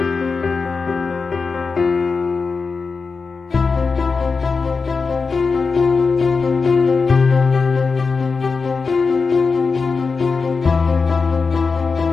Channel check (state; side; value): quieter; right; 4.7 dB